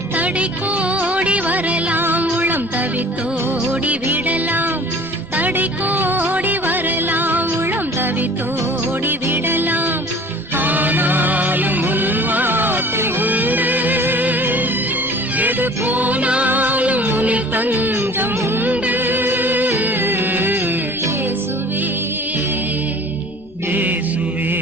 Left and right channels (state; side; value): normal; both; correlation 0.46